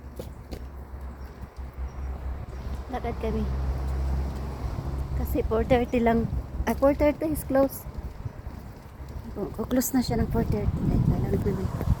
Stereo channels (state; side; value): identical; both; correlation 1.00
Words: Lakad kami. Kasi 4:30 lang. 4:30 is close. Close na siya ng 4:30. Kailangan namin